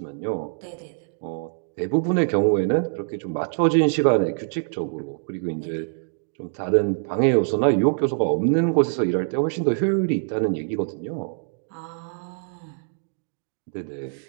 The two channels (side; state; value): left; silent; digital silence